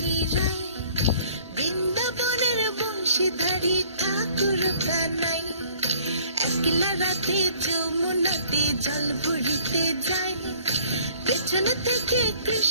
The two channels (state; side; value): inverted; both; correlation -0.56